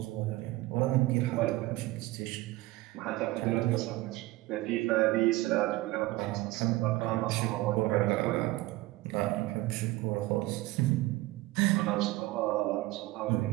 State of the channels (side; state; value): left; quieter; 18.7 dB